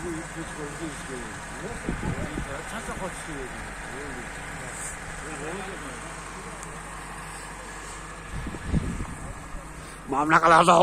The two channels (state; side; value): identical; both; correlation 1.00